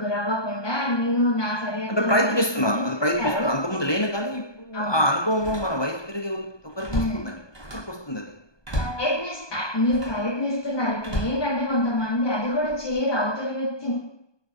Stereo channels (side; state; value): right; late; 1.2 ms